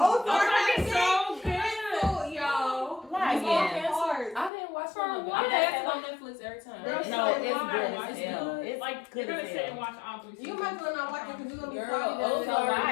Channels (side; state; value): right; drops out; at 4.5 s